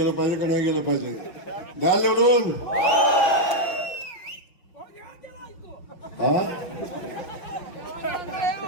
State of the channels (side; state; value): right; late; 5.9 ms